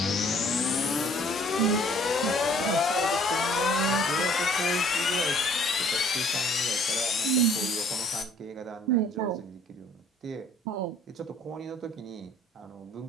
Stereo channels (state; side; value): normal; both; correlation 0.57